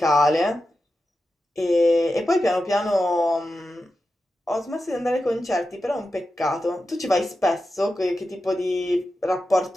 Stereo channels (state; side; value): normal; both; correlation 0.91